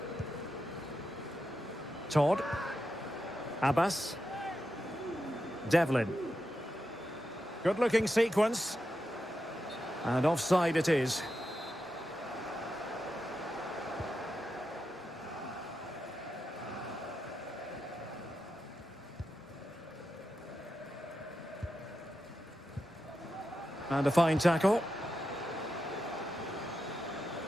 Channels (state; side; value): normal; both; correlation 0.88